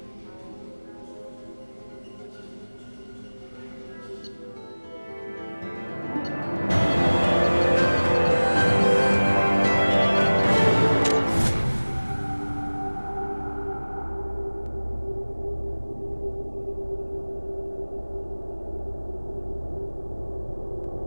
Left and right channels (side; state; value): both; inverted; correlation -1.00